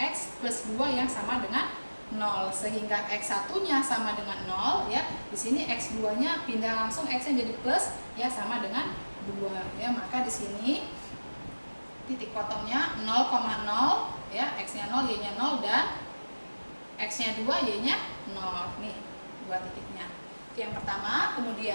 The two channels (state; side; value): inverted; both; correlation -1.00